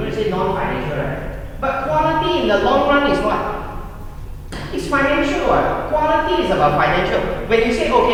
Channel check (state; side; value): identical; both; correlation 1.00